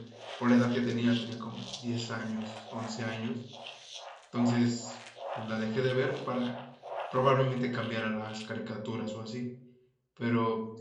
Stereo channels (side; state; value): both; identical; correlation 1.00